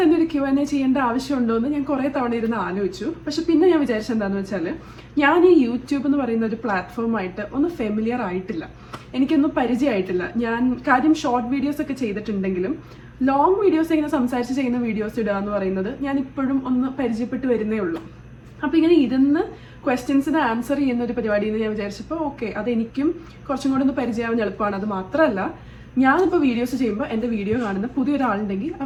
തന്നെ ഒരു Q&A ചെയ്യേണ്ട ആവശ്യമുണ്ടോ എന്ന് ഞാൻ കുറേ തവണ ഇരുന്ന് ആലോചിച്ചു. പക്ഷെ പിന്നെ ഞാൻ വിചാരിച്ചത് എന്താണെന്ന് വെച്ചാൽ ഞാൻ ഈ യൂട്യൂബ് എന്ന് പറയുന്ന ഒരു പ്ലാറ്റ്ഫോമായിട്ട് ഒന്ന് ഫെമിലിയർ ആയിട്ടില്ല, എനിക്കൊന്നും പരിചയമായിട്ടില്ല. ഞാൻ കാര്യം ഷോർട്ട് വീഡിയോസ് ഒക്കെ ചെയ്തിട്ടുണ്ടെങ്കിലും ലോങ് വീഡിയോസ് ഇങ്ങനെ സംസാരിച്ച് ചെയ്യുന്ന വീഡിയോസ് ഇടുക എന്ന് പറയുന്നത് ഞാൻ ഇപ്പോഴും ഒന്ന് പരിചയപ്പെട്ട് വരുന്നേ ഉള്ളൂ. അപ്പോൾ ഇങ്ങനെ ഇരുന്ന് ക്വസ്റ്റ്യൻസിന് ആൻസർ ചെയ്യുന്ന ഒരു പരിപാടി എന്ന് ഞാൻ വിചാരിച്ചപ്പോൾ ഓക്കെ, അതെനിക്കും കുറച്ചും കൂടെ ഒന്ന് പരിചയമാവാൻ എളുപ്പമാണ്. അത് മാത്രമല്ല, ഞാനിപ്പോൾ വീഡിയോസ് ചെയ്യുമ്പോൾ എൻ്റെ വീഡിയോ കാണുന്ന പുതിയൊരാളുണ്ടെങ്കിൽ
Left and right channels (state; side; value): identical; both; correlation 1.00